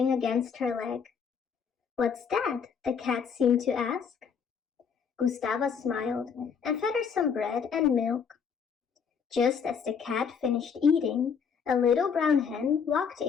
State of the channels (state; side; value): quieter; right; 6.6 dB